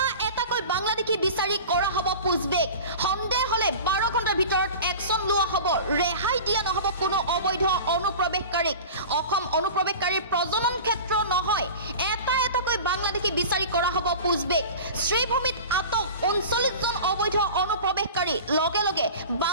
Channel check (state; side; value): inverted; both; correlation -0.35